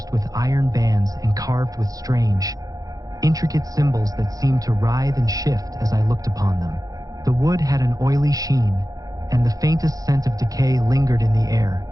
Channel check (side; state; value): left; late; 0.17 ms